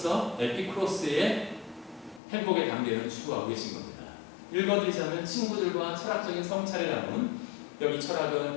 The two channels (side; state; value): right; drops out; at 2.2 s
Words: 에피쿠로스의 행복의 단계를 추구하고 계신 겁니다. 읽어드리자면 친구들과 철학적인 성찰을 나눈 여기